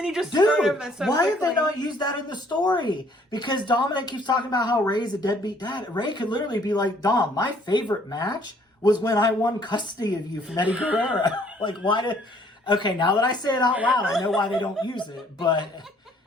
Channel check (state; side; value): normal; both; correlation 0.61